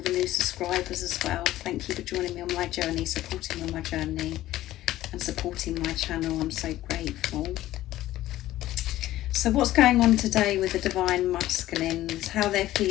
new subscribers as well. Thank you for joining me on my journey, supporting me on my journey and supporting my channel. I'm so grateful. So what's going on today with the divine masculines, how they're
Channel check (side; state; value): right; quieter; 14.8 dB